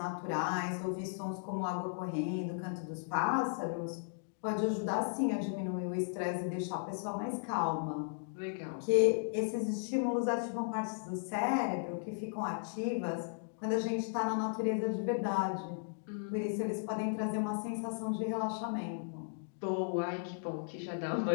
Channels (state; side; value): silent; right; digital silence